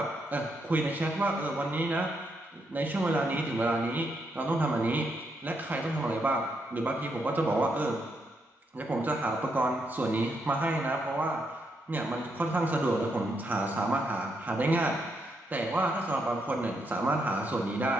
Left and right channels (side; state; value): both; normal; correlation 0.79